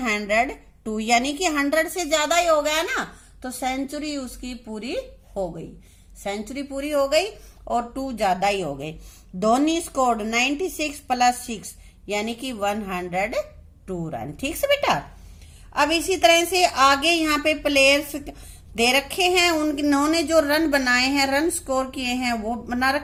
यानी कि 100 से ज्यादा ही हो गया ना, तो सेंचुरी उसकी पूरी हो गई, सेंचुरी पूरी हो गई और 2 ज्यादा ही हो गई। धोनी स्कोर्ड 96 प्लस 6 यानी कि 102 रन, ठीक से बेटा। अब इसी तरह से आगे यहाँ पे प्लेयर्स दे रखे हैं, उन्होंने जो रन बनाए हैं, रन स्कोर किए हैं वो बना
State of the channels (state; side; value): identical; both; correlation 1.00